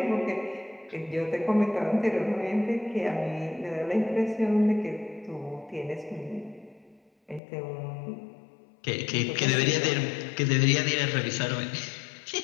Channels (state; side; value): drops out; right; at 7.4 s